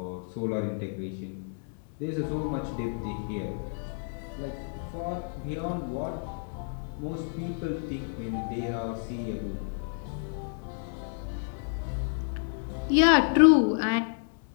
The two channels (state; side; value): silent; right; 58 dB below the other